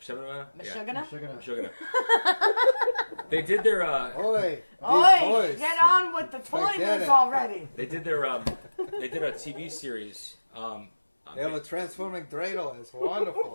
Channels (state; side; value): inverted; both; correlation -1.00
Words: They did their Oi, get on with the toilets already. They did their they did a TV series. They have a transforming dreidel. It's